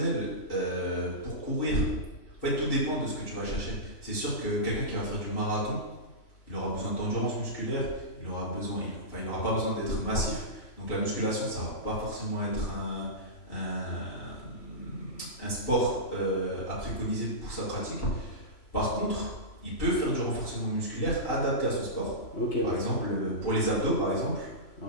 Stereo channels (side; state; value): right; late; 3.0 ms